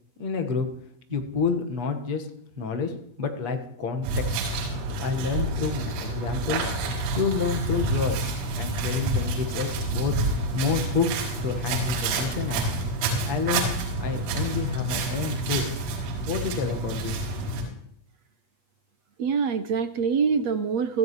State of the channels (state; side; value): late; left; 8.4 ms